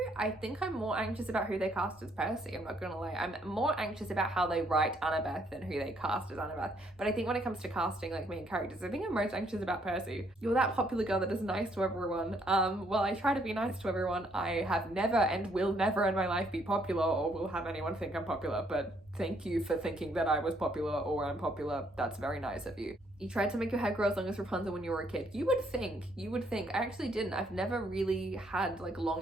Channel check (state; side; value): normal; both; correlation 0.69